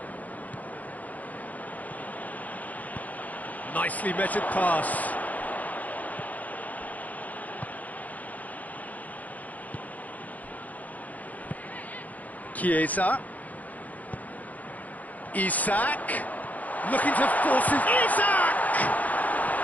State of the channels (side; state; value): right; late; 0.077 ms